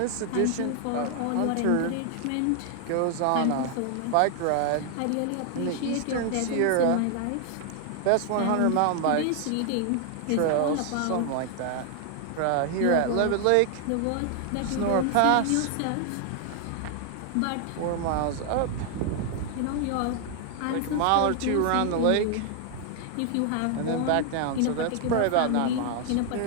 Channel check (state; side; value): different; both; correlation 0.00